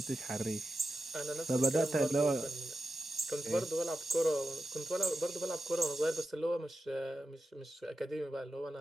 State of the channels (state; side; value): normal; both; correlation 0.91